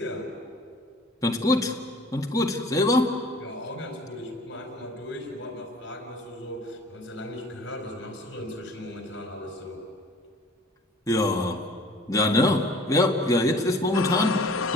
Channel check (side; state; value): both; normal; correlation 0.49